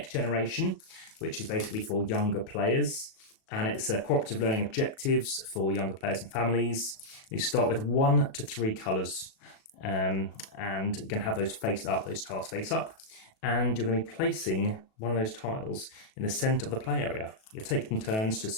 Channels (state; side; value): late; right; 37 ms